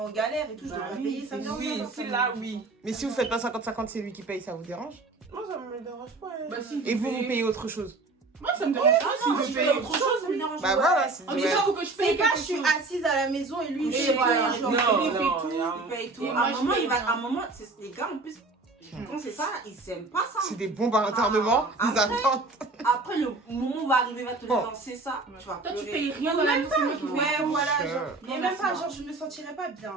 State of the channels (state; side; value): quieter; left; 3.4 dB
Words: galère et tout, je Bah devrais oui, payer, ça me dérange Oui, pas. c'est là, oui. Mais si vous faites pas 50-50, c'est lui qui paye, ça vous dérange? Moi, ça me dérange pas. hein. Bah, si, Et vous, vous payez autre chose? Moi, ça me dérange pas non, si si je je paye paye autre autre chose. ça me dérange Bah pas. voilà, c'est Oh, mais ouais. j'avoue que je paye C'est pas, quelque je suis chose. assise à la maison et lui, il Et fait voilà. tout, je Non, leur non, fais. il fait tout. Il paye tout. Et À moi, un je moment, paye il va. rien. À un moment, les gars, en plus, quand c'est ça, ils aiment pas ça. C'est des bombes à retardement, Ah, ils attendent. Après, le moment va arriver, il va te Oh. lancer ça. Tu vas Toi, tu pleurer. payes rien dans la maison, c'est moi qui Ouais, paye. voilà, Je- genre. Non, Et même merci, pas, moi. genre, je me sentirais pas bien.